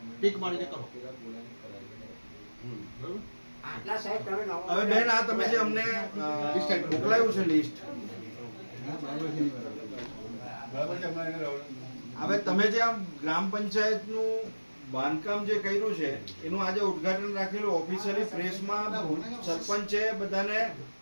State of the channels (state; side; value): inverted; both; correlation -1.00